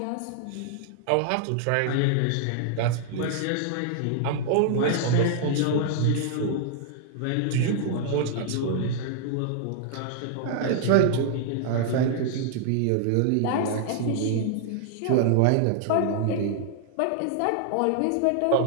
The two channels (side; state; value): both; different; correlation 0.00